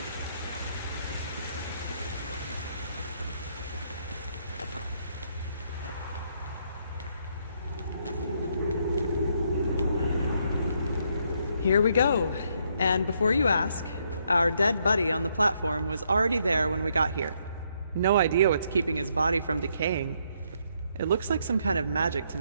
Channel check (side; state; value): both; inverted; correlation -0.73